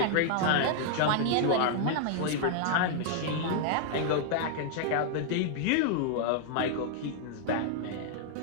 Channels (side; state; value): both; different; correlation 0.00